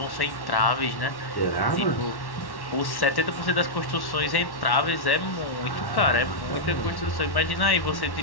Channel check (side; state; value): right; late; 1.1 ms